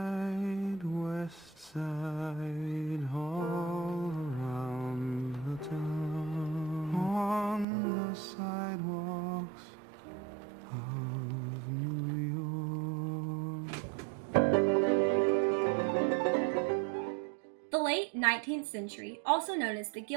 west side, all around the town, on the sidewalks of New York. The late 19th century, also known as the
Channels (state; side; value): drops out; left; at 7.7 s